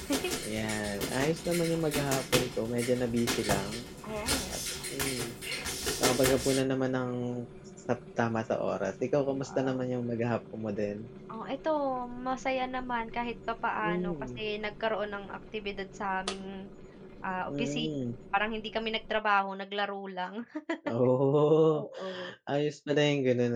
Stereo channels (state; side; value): identical; both; correlation 1.00